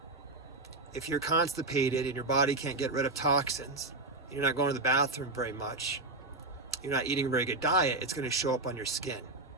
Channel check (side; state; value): left; quieter; 3.0 dB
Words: If you're constipated and your body can't get rid of toxins, you're not going to the bathroom very much, you're not eating a very good diet, it's going to show up on your skin.